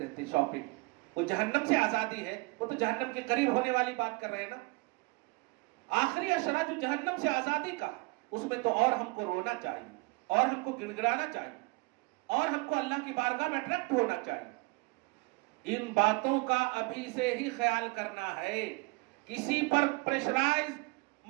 شاپنگ۔ وہ جہنم سے آزادی ہے، وہ تو جہنم کے قریب ہونے والی بات کر رہے ہیں نا۔ آخری اشرا جو جہنم سے آزادی کا، اس میں تو اور ہم کو رونا چاہیے، اور ہم کو گڑگڑانا چاہیے، اور ہم کو اللہ کی بارگاہ میں اٹریکٹ ہونا چاہیے۔ ان باتوں کا ابھی سے ہی خیال کرنا ہے، کسی پر پریشرائز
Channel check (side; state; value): left; quieter; 26.8 dB